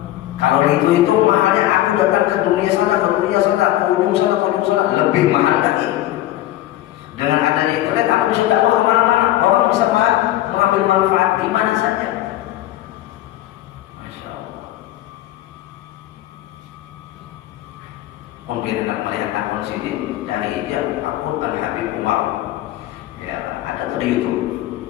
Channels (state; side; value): quieter; right; 14.6 dB